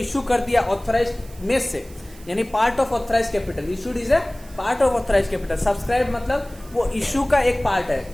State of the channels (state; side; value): noise; right; hiss, 23 dB below the sound